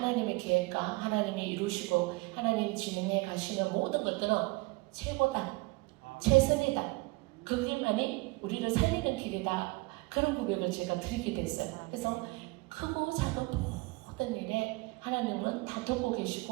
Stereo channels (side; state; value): left; quieter; 24.6 dB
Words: 계획과 하나님이 이루시고 하나님이 진행해 가시는 모든 것들은 최고다. 최선이다. 그 길만이 우리를 살리는 길이다. 그런 고백을 제가 드리게 됐어요. 그래서 크고 작은 모든 일에 하나님은 다 듣고